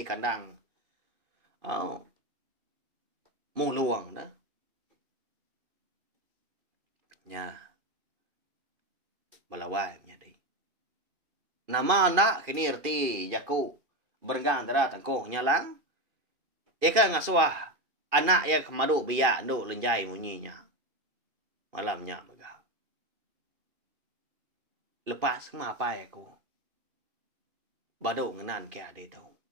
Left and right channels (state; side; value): late; left; 2.5 ms